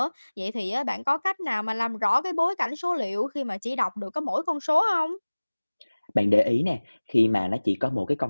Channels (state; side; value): inverted; both; correlation -1.00